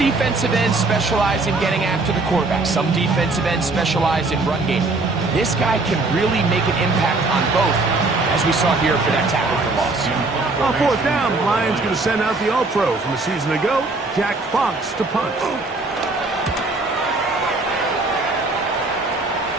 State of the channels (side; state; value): left; quieter; 3.3 dB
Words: ends specialize in getting after the quarterback. Some defensive ends specialize in run game. This guy can really make an impact on both, as we saw here for that tackle for loss. On 4th down, the Lions going to send out the All-Pro from a season ago, Jack Fox, to punt.